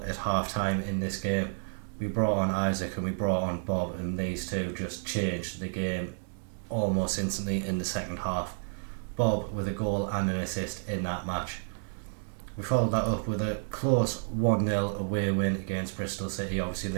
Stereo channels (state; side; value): silent; left; digital silence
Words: at half time in this game. We brought on Isaac and we brought on Bob, and these two just changed the game almost instantly in the second half. Bob with a goal and an assist in that match. We followed that up with a close 1-0 away win against Bristol City. Obviously